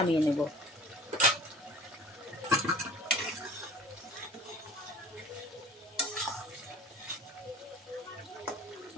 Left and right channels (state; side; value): normal; both; correlation 0.44